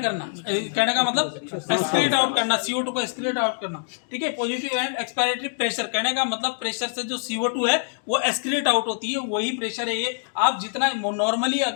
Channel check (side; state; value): right; silent; digital silence